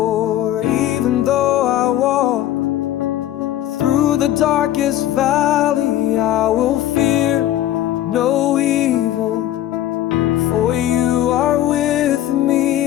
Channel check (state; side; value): quieter; right; 12.9 dB